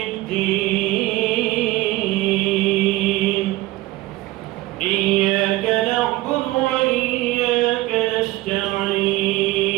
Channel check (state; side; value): quieter; left; 18.1 dB